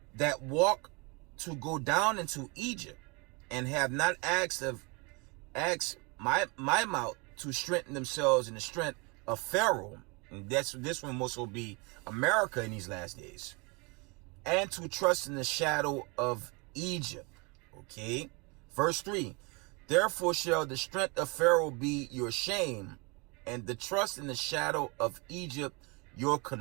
that walk to go down into Egypt, and have not asked my mouth to strengthen themselves in the strength of Pharaoh, And this one must will be America in these last days. And to trust in the shadow of Egypt. Okay. Verse 3. Therefore shall the strength of Pharaoh be your shame, and the trust in the shadow of Egypt your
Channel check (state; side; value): quieter; left; 28.6 dB